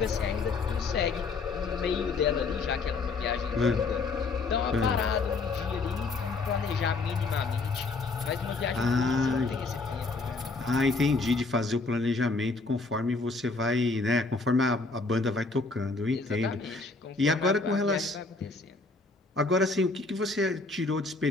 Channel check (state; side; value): quieter; right; 3.8 dB